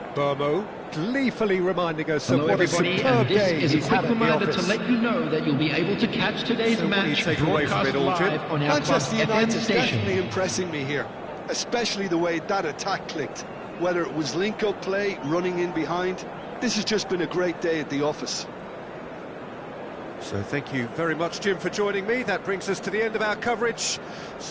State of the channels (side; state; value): both; identical; correlation 1.00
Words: Burmo gleefully reminding us Hello of what a everybody, superb and this game is a he's quick had at the reminder to office. let you know that you'll be able to catch today's So what do you match take away from broadcast it all, Jim? live on our Manchester Club FM United's station. definitely impressing me here, especially the way that attack clicked. Whether it was link-up play, running in behind, this has just been a great day at the office. So thank you very much, Jim, for joining me. That brings us to the end of our coverage.